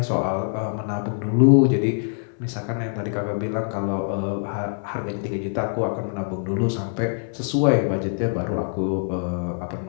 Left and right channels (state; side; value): silent; right; digital silence